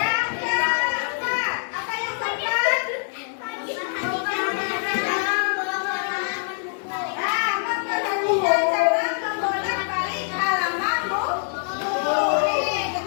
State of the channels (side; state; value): right; silent; digital silence